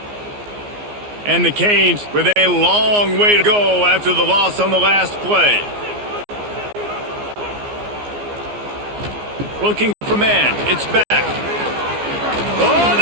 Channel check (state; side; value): late; left; 14 ms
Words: And the Canes with a long way to go after the loss on the last play. Looking for man. It's back. Oh,